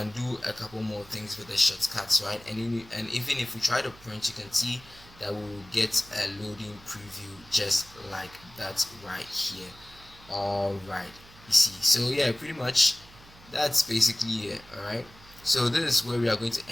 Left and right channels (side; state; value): right; noise; hum, 22 dB below the sound